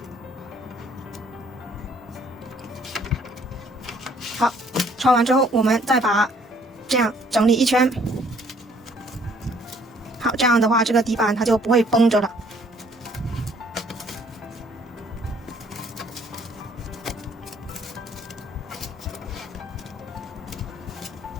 好，穿完之后，我们再把这样整理一圈。好，这样的话，这个底板它就不会绷着了。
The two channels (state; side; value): normal; both; correlation 0.61